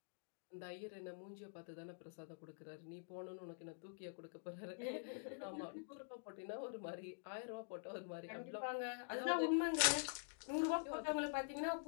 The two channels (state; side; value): silent; right; digital silence